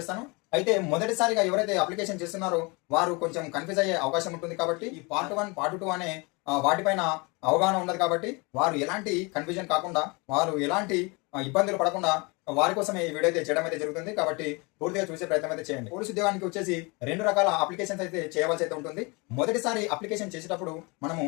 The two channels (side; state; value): right; quieter; 28.1 dB